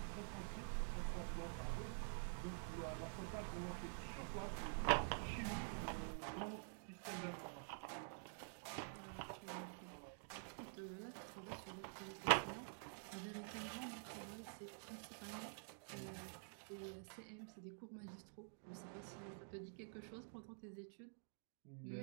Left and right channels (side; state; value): left; silent; digital silence